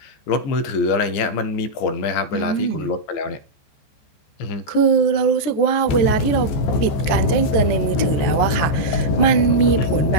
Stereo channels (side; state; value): right; late; 14 ms